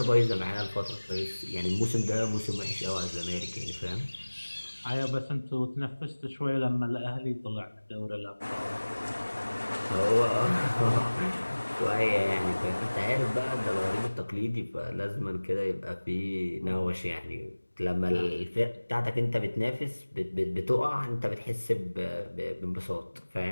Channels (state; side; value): inverted; both; correlation -1.00